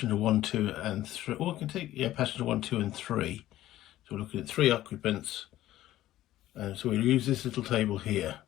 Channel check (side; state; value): right; quieter; 14.3 dB